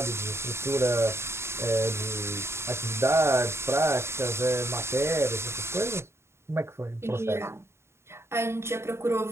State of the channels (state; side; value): late; left; 0.13 ms